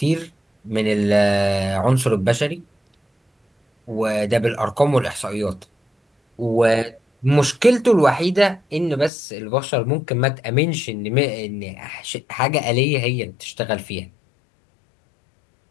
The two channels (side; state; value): right; drops out; at 9.1 s